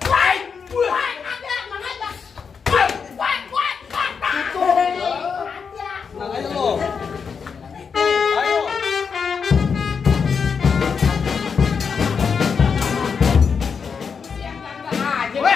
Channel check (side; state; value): right; quieter; 6.0 dB